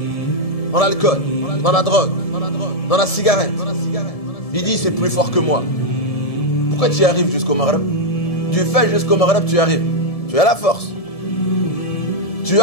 dans l'alcool, dans la drogue, dans la cigarette, il dit c'est plus fort que moi. Pourquoi tu y arrives jusqu'au Maghrib? Tu fais jusqu'au Maghrib, tu y arrives. Tu as la force. Tu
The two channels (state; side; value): late; right; 1.7 ms